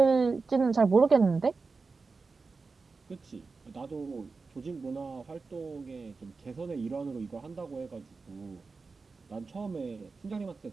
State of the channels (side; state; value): left; quieter; 4.3 dB